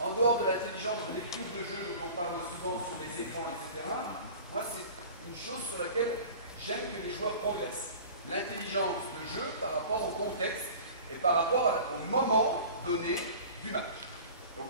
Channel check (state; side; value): inverted; both; correlation -0.40